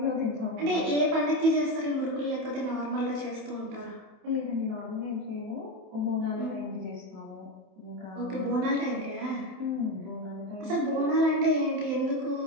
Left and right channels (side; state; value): left; late; 27 ms